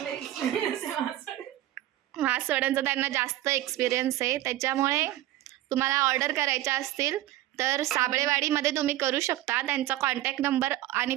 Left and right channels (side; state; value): left; quieter; 14.9 dB